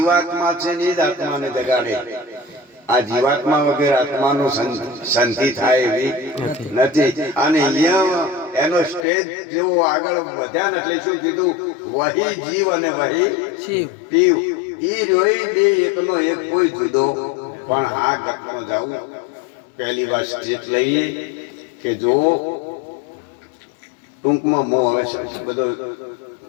છે ને એ જ આત્માને જગાડે. આ જીવાત્મા વગર આત્માનું શાંતિ થાય એવી નથી. અને અહીંયા એનો સ્ટેજ જેવો આગળ વધ્યા ને એટલે શું કીધું, વહી જીવ અને વહી પીવ. ઈ રોઈ બે એકનો એક કોઈ જુદો. પણ આ ગતમાં જાવું પહેલી વાર સ્ટેજ લઈ લે કે જો ટૂંકમાં મો હવે બધો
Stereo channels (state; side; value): drops out; right; at 9.1 s